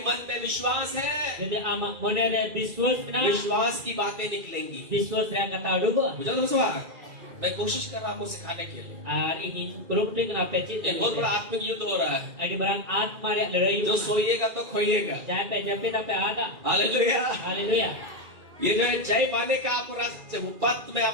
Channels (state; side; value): late; left; 2.4 ms